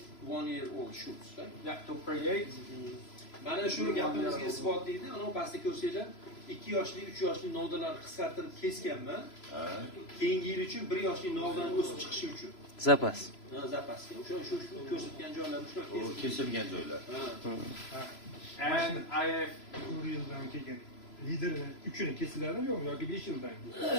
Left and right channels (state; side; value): late; right; 3.0 ms